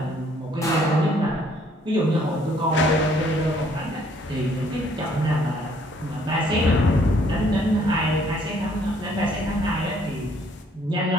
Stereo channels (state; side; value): normal; both; correlation 0.63